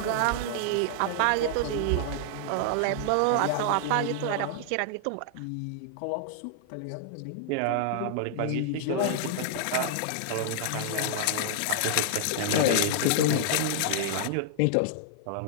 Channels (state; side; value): different; both; correlation -0.01